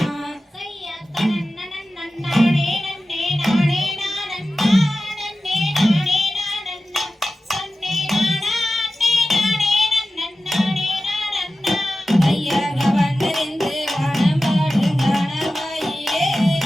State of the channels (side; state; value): both; normal; correlation 0.93